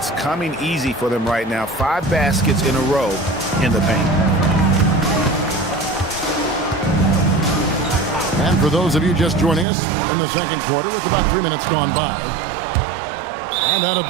coming easy for them right now. 5 baskets in a row in the paint. And for those of you just joining us in the second quarter with about 3 minutes gone by. And out of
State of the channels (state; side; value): drops out; left; at 9.7 s